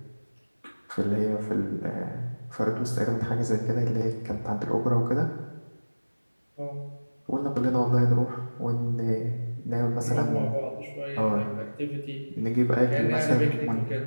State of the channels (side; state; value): both; inverted; correlation -1.00